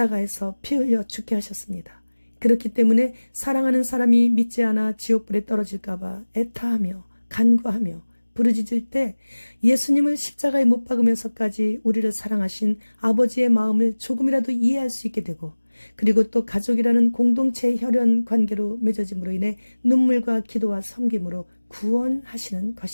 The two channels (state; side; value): inverted; both; correlation -1.00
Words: 피 흘려 죽게 하셨습니다. 그렇기 때문에 사랑하는 사람이 믿지 않아 지옥불에 떨어질까 봐 애타하며 간구하며 부르짖을 때 예수님을 십자가에 못 박으면서까지 우리를 사랑하신 아버지의 마음을 조금이라도 이해할 수 있게 되고 그리고 또 가족이라는 공동체의 혈연 관계로 맺어짐으로 인해 눈물과 기도와 섬김으로 구원하시는